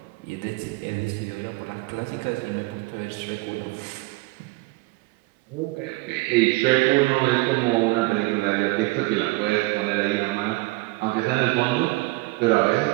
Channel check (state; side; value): quieter; left; 22.7 dB